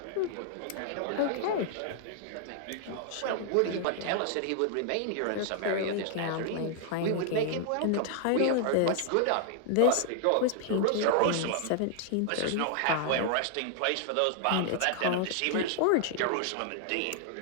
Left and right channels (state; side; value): different; both; correlation 0.00